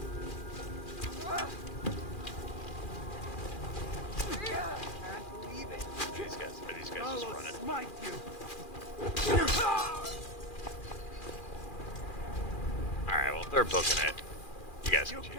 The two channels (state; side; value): late; right; 2.4 ms